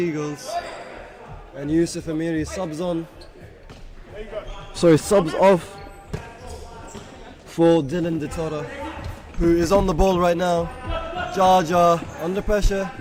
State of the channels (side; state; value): both; identical; correlation 1.00